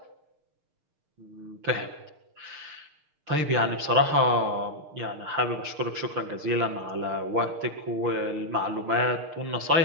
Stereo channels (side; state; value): left; late; 6.6 ms